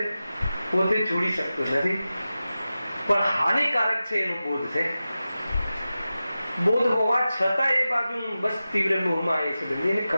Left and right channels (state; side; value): inverted; both; correlation -0.94